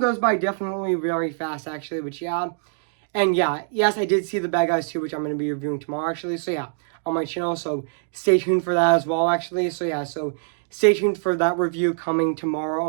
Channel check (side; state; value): left; silent; digital silence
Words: by definitely very fast actually. Which yeah, and yeah, yes, I did see The Bad Guys 2, which I'm going to be reviewing tomorrow, actually. So yeah, on my channel. So stay tuned for that as well, actually. So yeah, so stay tuned for that review coming tomorrow